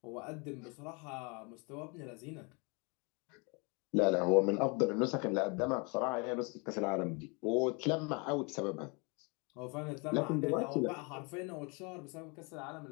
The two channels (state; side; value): quieter; right; 31.4 dB